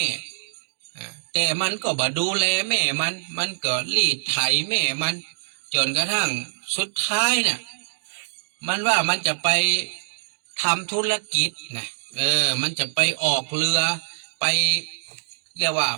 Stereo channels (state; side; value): silent; left; digital silence